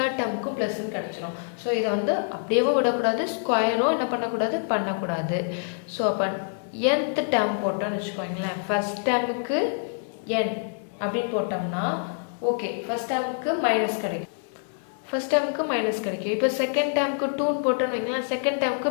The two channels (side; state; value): right; silent; digital silence